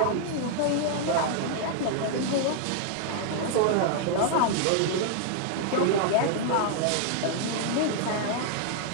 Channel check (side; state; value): both; different; correlation 0.00